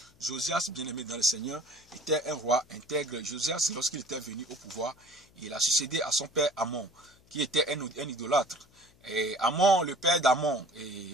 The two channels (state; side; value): noise; left; hum, 30 dB below the sound